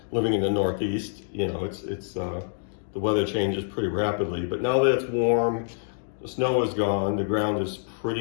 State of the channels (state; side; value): silent; right; digital silence